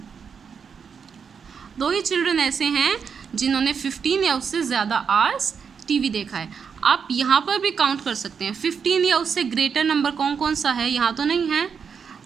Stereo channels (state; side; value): quieter; left; 6.4 dB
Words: 2 ही चिल्ड्रन ऐसे हैं जिन्होंने 15 या उससे ज़्यादा आवर्स टीवी देखा है. आप यहाँ पर भी काउंट कर सकते हैं. 15 या उससे ग्रेटर नंबर कौन कौन सा है, यहाँ तो नहीं है.